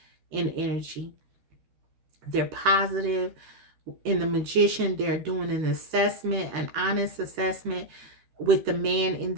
in energy. They're positive. In the Magician, they're doing an assessment, an honest assessment with the man in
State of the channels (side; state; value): left; late; 13 ms